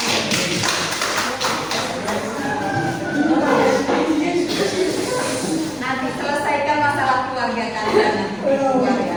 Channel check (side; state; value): left; noise; hum, 26 dB below the sound